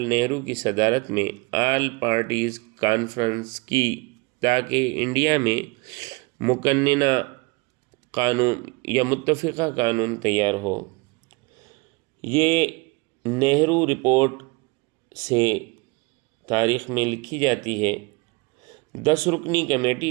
نہرو کی صدارت میں آل پارٹیز کانفرنس کی تاکہ انڈیا میں مقننہ قانون یا متفقہ قانون تیار ہو۔ یہ نہرو رپورٹ سے تاریخ میں لکھی جاتی ہے۔ 10 رکنی کمیٹی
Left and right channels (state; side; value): quieter; left; 26.4 dB